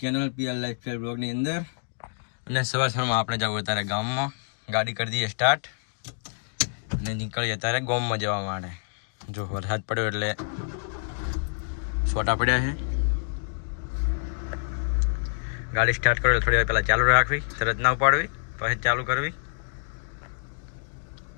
channel PR lifestyle બ્લોગની અંદર. અને સવારમાં આપણે જવું અત્યારે ગામમાં, ગાડી કરી દઈએ સ્ટાર્ટ અને નીકળીએ અત્યારે ગામમાં જવા માટે. જો વરસાદ પડ્યો એટલે છોટા પડ્યા છે. ગાડી સ્ટાર્ટ કરો થોડી વાર પહેલાં ચાલુ રાખવી, તરત ના ઉપાડવી, પછી ચાલુ કરવી.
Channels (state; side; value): silent; right; digital silence